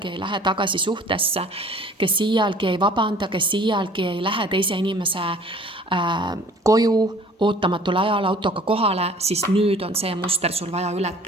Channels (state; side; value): normal; both; correlation 0.50